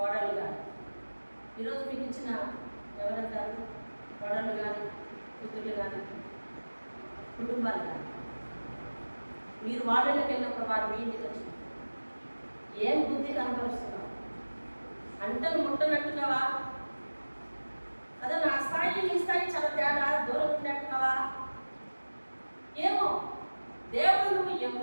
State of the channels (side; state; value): both; inverted; correlation -1.00